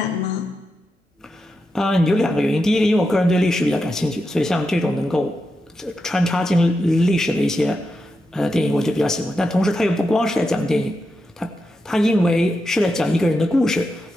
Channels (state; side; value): normal; both; correlation 0.87